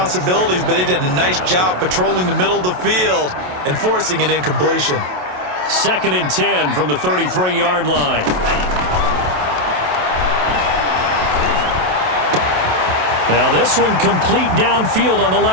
but they did a nice job patrolling the middle of the field and forcing an incompletion. 2nd and 10 from the 33-yard line. Now this one complete downfield on the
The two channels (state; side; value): late; left; 27 ms